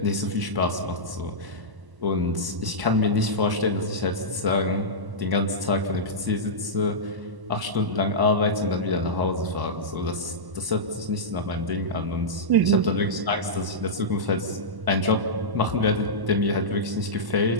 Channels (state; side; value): late; left; 1.0 ms